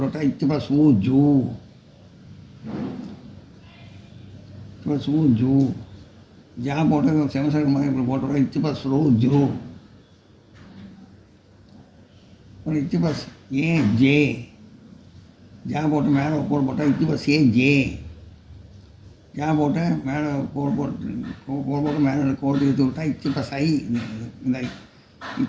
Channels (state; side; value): identical; both; correlation 1.00